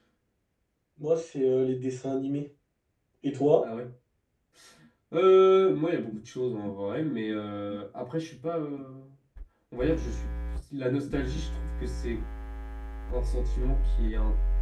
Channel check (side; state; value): both; identical; correlation 1.00